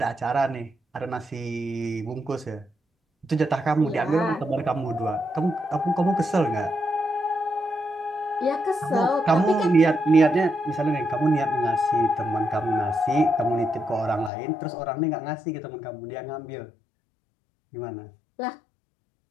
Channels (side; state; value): right; drops out; at 14.3 s